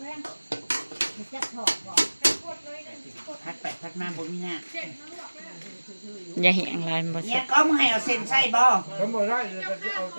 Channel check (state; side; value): inverted; both; correlation -1.00